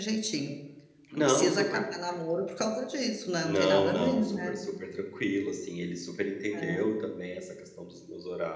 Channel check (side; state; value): both; identical; correlation 1.00